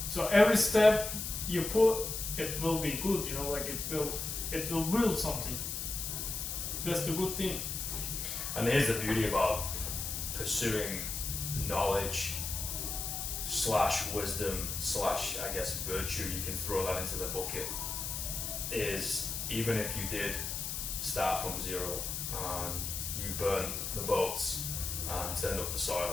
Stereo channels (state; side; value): noise; left; hiss, 4 dB below the sound